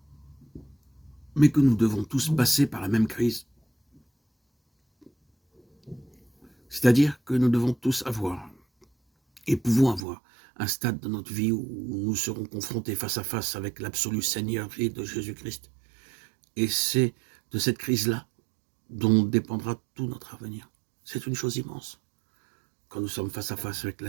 mais que nous devons tous passer par la même crise. C'est-à-dire que nous devons tous avoir, et pouvons avoir, un stade de notre vie où nous serons confrontés face à face avec l'absolue Seigneurie de Jésus-Christ. Et c'est de cette crise-là dont dépendra tout notre avenir. C'est une chose immense quand nous sommes face à face avec la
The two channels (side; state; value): left; drops out; at 10.1 s